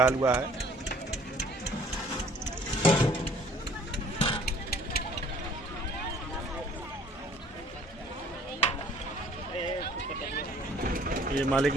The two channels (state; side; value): normal; both; correlation 0.55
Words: हलवा है। ये मालिक